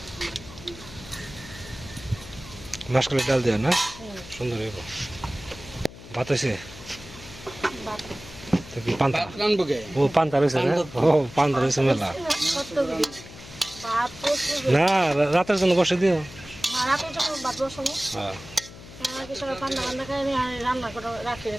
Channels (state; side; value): noise; left; hum, 17 dB below the sound